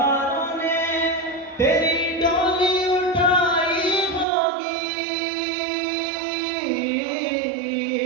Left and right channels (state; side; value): drops out; left; at 4.2 s